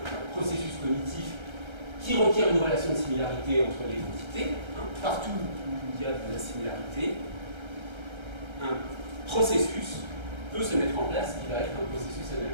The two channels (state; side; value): late; left; 1.3 ms